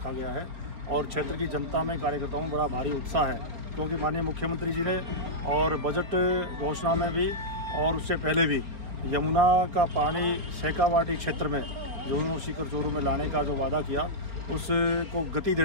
गया है और क्षेत्र की जनता में, कार्यकर्ताओं में बड़ा भारी उत्साह है, क्योंकि माननीय मुख्यमंत्री जी ने और बजट घोषणा में भी और उससे पहले भी यमुना का पानी शेखावाटी क्षेत्र में झुंझुनू सीकर चोरू में लाने का जो वादा किया, उसको गति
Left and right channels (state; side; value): late; left; 4.0 ms